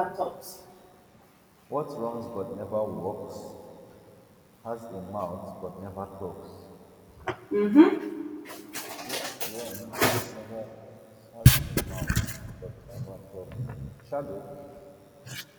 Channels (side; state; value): both; identical; correlation 1.00